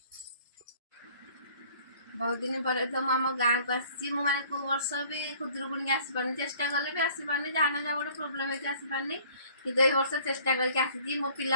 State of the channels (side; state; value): both; inverted; correlation -0.54